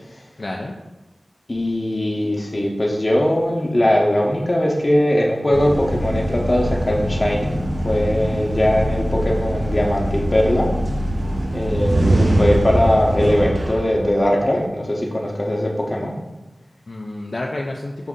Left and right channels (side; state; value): both; normal; correlation 0.97